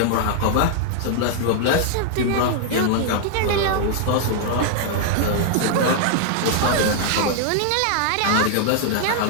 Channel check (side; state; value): both; different; correlation -0.01